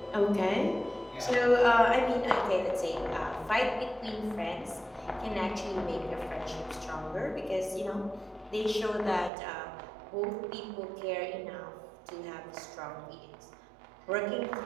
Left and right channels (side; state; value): left; drops out; at 9.3 s